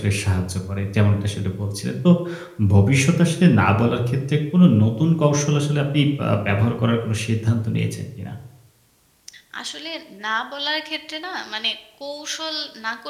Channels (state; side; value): identical; both; correlation 1.00